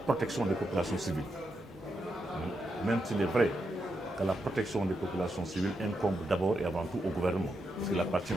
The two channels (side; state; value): both; normal; correlation 0.84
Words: des populations civiles. Même s'il est vrai que la protection des populations civiles incombe d'abord et avant tout au gouvernement, parce qu'il appartient